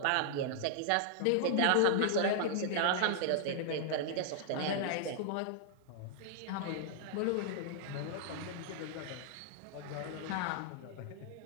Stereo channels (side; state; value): both; different; correlation -0.01